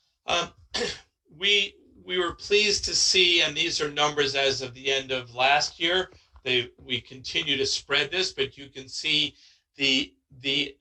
We were pleased to see, and these are numbers as of the end of last year. We continue to spread this, but you can see the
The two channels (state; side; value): identical; both; correlation 1.00